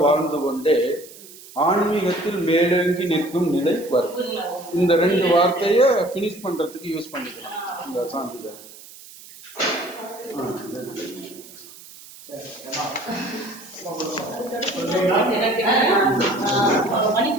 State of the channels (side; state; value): right; noise; hiss, 19 dB below the sound